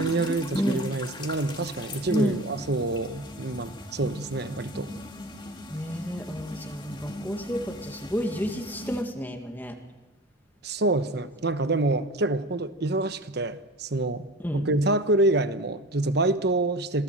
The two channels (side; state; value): both; normal; correlation 0.36